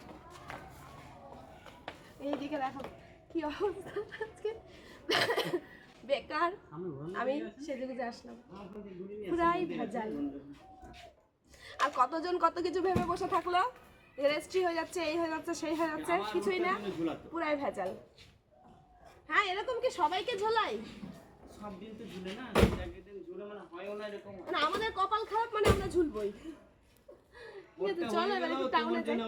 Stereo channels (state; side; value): identical; both; correlation 1.00